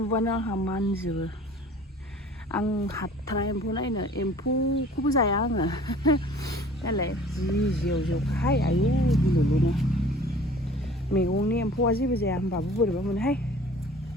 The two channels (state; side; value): normal; both; correlation 0.48